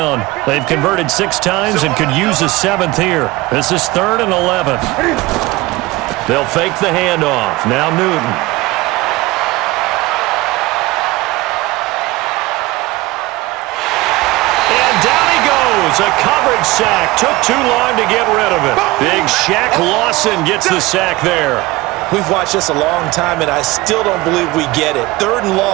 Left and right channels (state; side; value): quieter; left; 20.2 dB